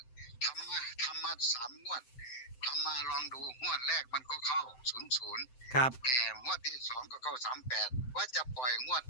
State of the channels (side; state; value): right; late; 7.8 ms